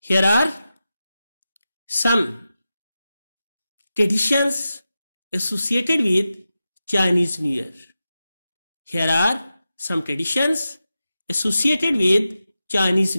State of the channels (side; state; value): both; inverted; correlation -0.92